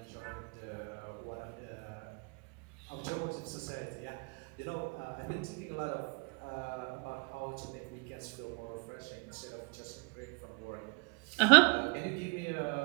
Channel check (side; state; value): left; quieter; 32.0 dB